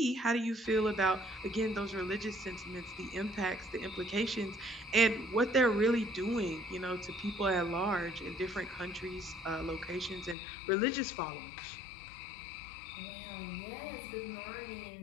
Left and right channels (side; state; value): right; drops out; at 10.4 s